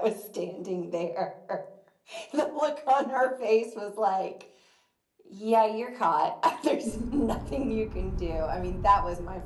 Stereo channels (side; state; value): both; identical; correlation 1.00